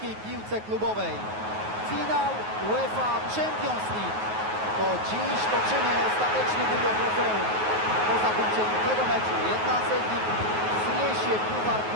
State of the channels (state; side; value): late; left; 9.4 ms